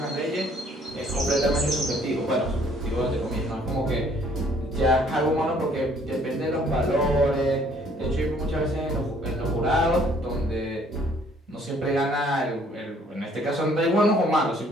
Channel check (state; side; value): normal; both; correlation 0.61